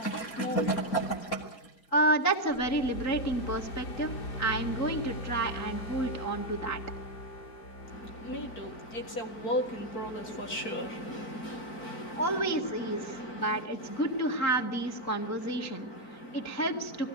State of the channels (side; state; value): right; late; 4.4 ms